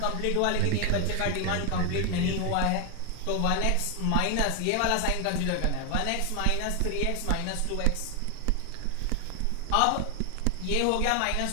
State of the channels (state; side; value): different; both; correlation 0.00